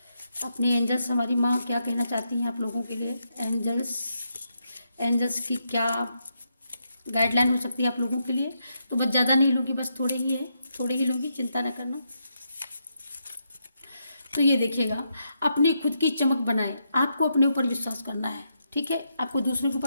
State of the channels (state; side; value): inverted; both; correlation -0.81